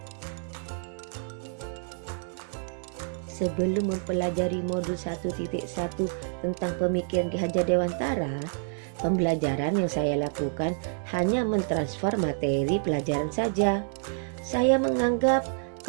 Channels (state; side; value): silent; left; digital silence